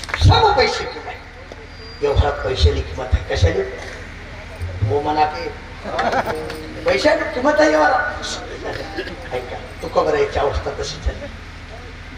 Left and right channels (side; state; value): both; identical; correlation 1.00